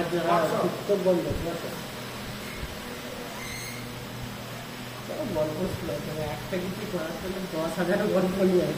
উত্তর বন্ধ ঠিক আছে। গল্প ছিল একটা কিছু করার জন্য 10,000 গল্প নিয়ে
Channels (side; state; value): both; identical; correlation 1.00